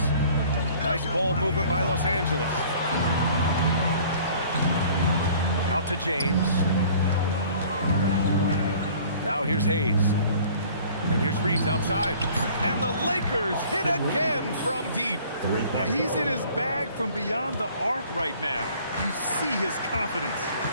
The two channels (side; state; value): both; inverted; correlation -0.51